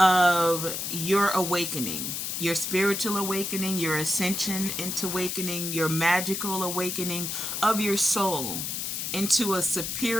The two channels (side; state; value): left; noise; hiss, 3 dB below the sound